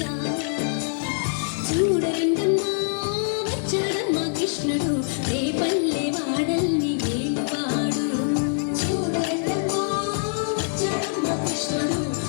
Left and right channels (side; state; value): right; silent; digital silence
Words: చూడరండమ్మా వచ్చాడమ్మ కృష్ణుడు ఏ పల్లె వాడల్ని ఏలువాడు. చూడరండమ్మా వచ్చాడమ్మ కృష్ణుడు